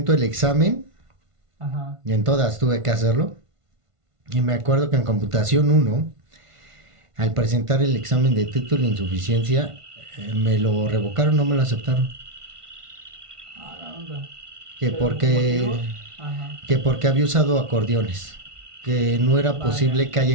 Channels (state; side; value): late; left; 1.5 ms